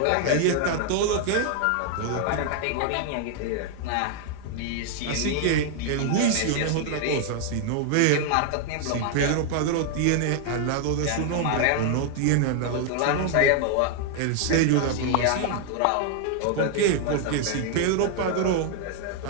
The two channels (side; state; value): both; different; correlation 0.00